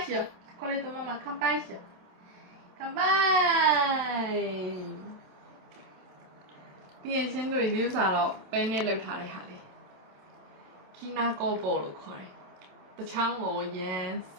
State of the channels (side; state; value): left; late; 27 ms